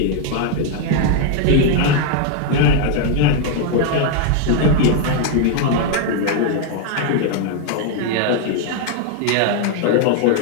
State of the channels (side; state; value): both; different; correlation 0.00